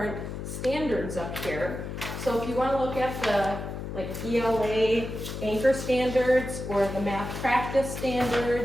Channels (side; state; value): left; noise; hum, 7 dB below the sound